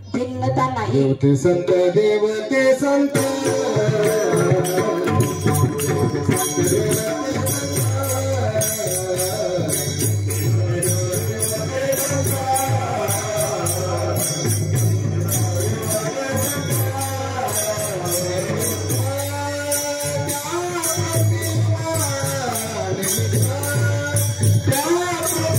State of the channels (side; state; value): both; identical; correlation 1.00